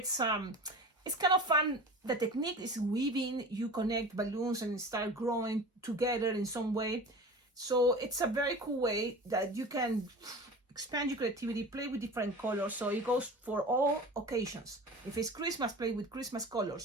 kind of fun. The technique is weaving. You connect balloons and start growing together in some way. So it's a very cool way that you can expand your creativity, play with different colors. So it goes for all occasions. If it's Christmas, play with Christmas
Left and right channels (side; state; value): both; normal; correlation 0.35